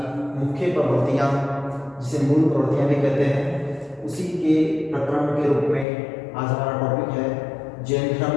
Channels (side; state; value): right; drops out; at 5.9 s